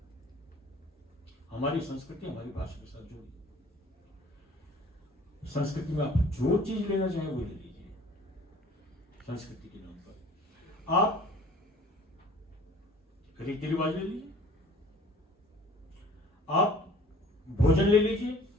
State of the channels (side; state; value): both; normal; correlation 0.50